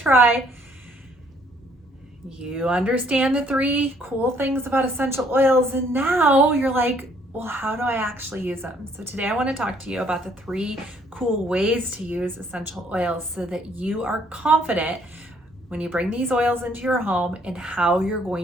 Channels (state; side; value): normal; both; correlation 0.65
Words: You understand the 3 cool things about essential oils, and now you're like, well, how do I actually use them? So today I want to talk to you about the 3 cool ways to use essential oils so that you are confident when you bring these oils into your home and how you're